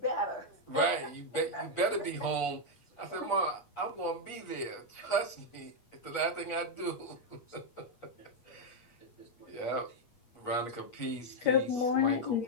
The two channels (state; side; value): late; right; 8.4 ms